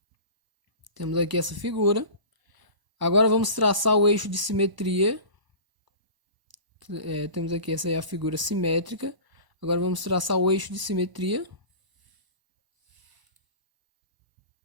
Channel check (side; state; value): left; late; 1.0 ms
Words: Temos aqui essa figura. Agora vamos traçar o eixo de simetria. Temos aqui essa é a figura simétrica. Agora vamos traçar o eixo de simetria.